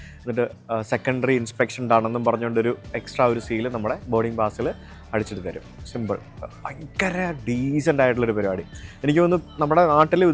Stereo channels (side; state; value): both; identical; correlation 1.00